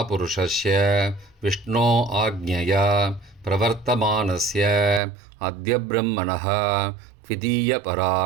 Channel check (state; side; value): drops out; left; at 5.0 s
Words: विष्णो आज्ञया प्रवर्तमानस्य अद्य ब्रह्मणः